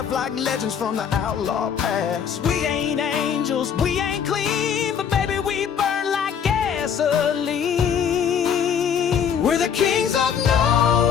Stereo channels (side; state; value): right; quieter; 7.7 dB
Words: like legends from the outlaw past. We ain't angels, we ain't clean, but baby, we burn like gasoline. We're the kings of